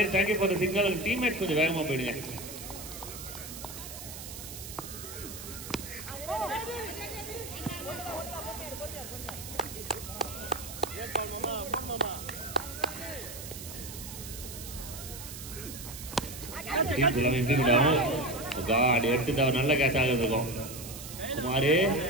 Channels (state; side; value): noise; right; hiss, 11 dB below the sound